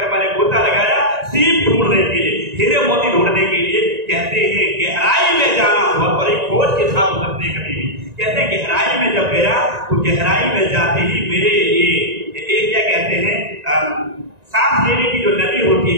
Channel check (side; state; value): left; late; 1.9 ms